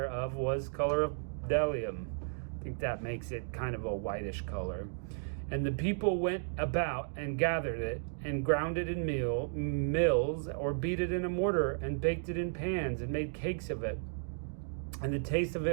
was color of bdellium. I think that makes it kind of a whitish color. And the people went about and gathered it, and ground it in mills, or beat it in a mortar, and baked it in pans, and made cakes of it. And the taste of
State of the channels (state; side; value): silent; left; digital silence